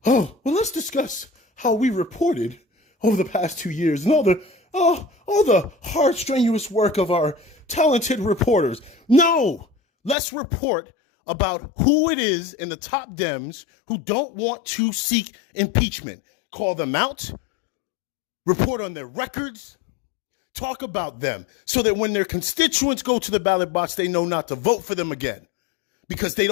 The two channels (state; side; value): drops out; right; at 10.2 s